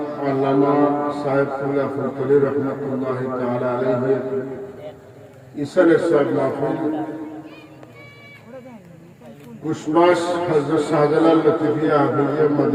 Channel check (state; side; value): identical; both; correlation 1.00